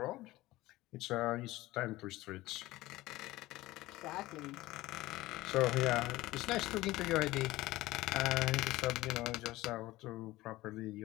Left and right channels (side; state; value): right; quieter; 18.1 dB